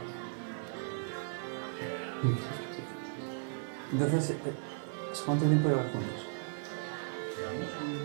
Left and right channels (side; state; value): left; silent; digital silence